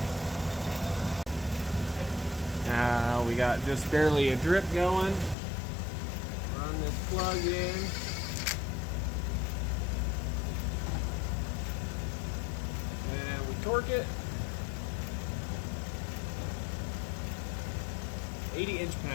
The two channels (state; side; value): drops out; right; at 5.4 s